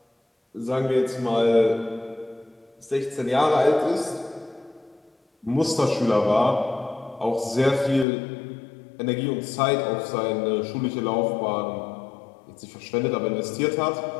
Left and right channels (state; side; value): drops out; right; at 8.1 s